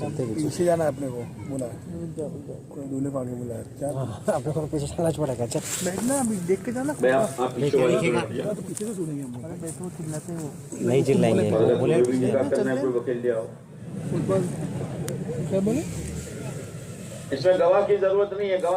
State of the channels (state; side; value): identical; both; correlation 1.00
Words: پیچھے جانا ہے اپنے کو، بولا کوئی دولہے کو آگے بولا ہے. اپنے کو پیچھے چلنا پڑے گا. بیٹھنا ابھی دیکھ کے جانا. آپ پیچھے والے کو بیٹھ جاؤ. پیچھے سے سنیں گے ہم. بیٹھو چلاتے ہیں وہ نہیں چلائیں گے. اگر کوئی نکاح کرنا ہے کوئی وکیل لے آؤ. کیا بولے؟ اس میں گواہ کی ضرورت نہیں ہے،